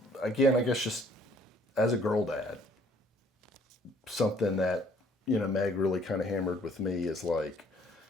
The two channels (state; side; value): normal; both; correlation 0.60